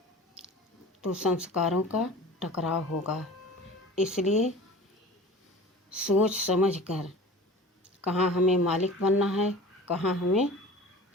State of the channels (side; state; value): both; normal; correlation 0.39